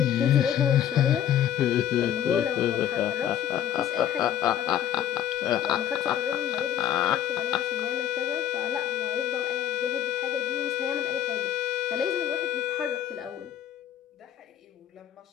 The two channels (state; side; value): quieter; right; 10.5 dB